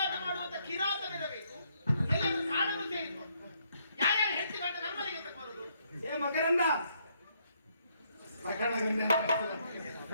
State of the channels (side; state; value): both; inverted; correlation -0.72